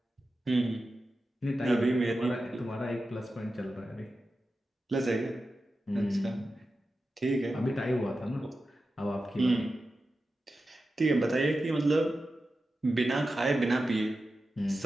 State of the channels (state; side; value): normal; both; correlation 0.92